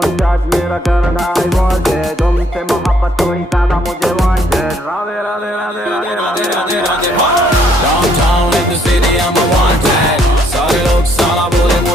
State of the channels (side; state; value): both; normal; correlation 0.68